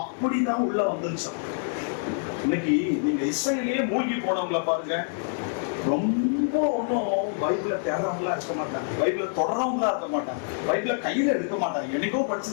உள்ள வந்துருச்சு. இன்னைக்கு நீங்க இசையிலேயே மூழ்கி போனவங்கள பாருங்க, ரொம்ப ஒன்னும் பைபிள தேடுறவங்களா இருக்க மாட்டாங்க, பைபிள தொடர்றவங்களா இருக்க மாட்டாங்க, பைபிள கையில எடுக்க மாட்டாங்க, என்னைக்கோ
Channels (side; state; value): right; silent; 61 dB below the other